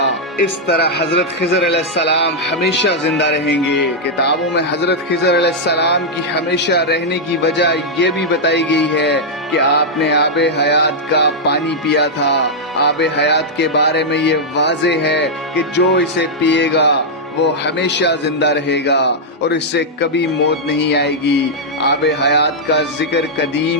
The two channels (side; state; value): both; normal; correlation -0.05